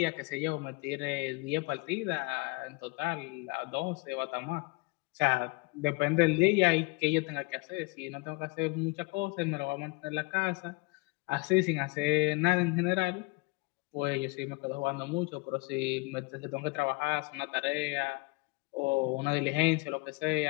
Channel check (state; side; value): quieter; right; 26.5 dB